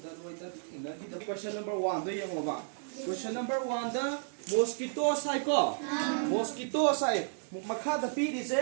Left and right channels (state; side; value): silent; left; digital silence